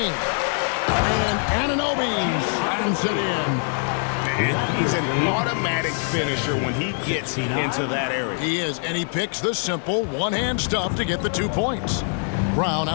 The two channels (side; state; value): right; silent; 56 dB below the other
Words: And Anunoby slams it in. And he's an automatic finisher when he gets into that area. He is, and he picks the simple one-hand stuff to get the 2 points. Brown